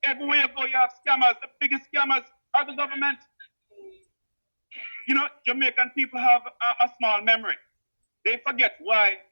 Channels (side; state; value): both; inverted; correlation -1.00